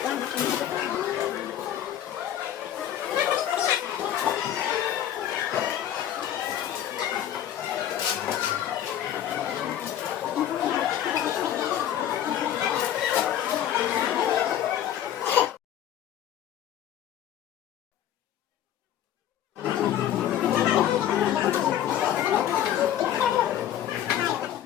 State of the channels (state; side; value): quieter; right; 11.0 dB